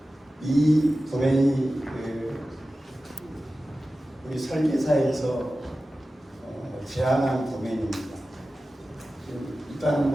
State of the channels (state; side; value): normal; both; correlation 0.95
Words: 이 도면이 우리 설계사에서 제안한 도면입니다. 일단